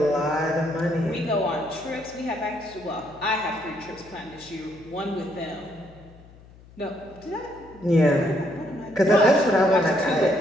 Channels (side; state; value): left; noise; hum, 23 dB below the sound